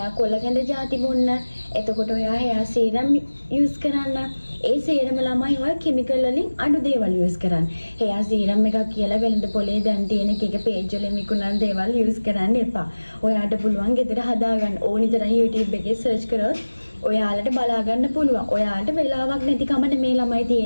කොළකැඳ ಜಾති බොන්න. එතකොට ඔයා හෙයා සීරම් යූස් කරන්න. ඒ සීරම ළමයි ඔය කිමිකල් වලින් අඩු දේවල් යූස් කරන්න. හෙයා සීරම් එකක් කියලා වෙළඳ පොලේ දැන් තියෙන එක පේජ් වලින් විකුණන දේවල් යූස් කරන්න එපා. ඔයාට පුළුවන් ගෙදර හදාගන්න ඕනි තරම් YouTube එකේ සර්ච් කරොත් ඔයාලට බලා ගන්න පුළුවන්. ඔයාලට වෙලාවක් නැතිකම නෙමේ ළමයි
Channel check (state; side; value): inverted; both; correlation -1.00